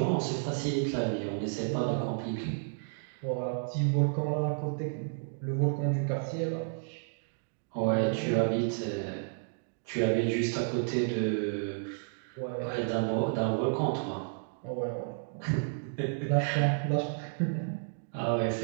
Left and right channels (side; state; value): left; silent; digital silence